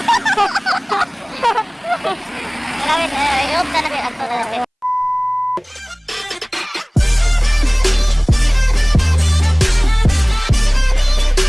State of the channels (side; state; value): both; identical; correlation 1.00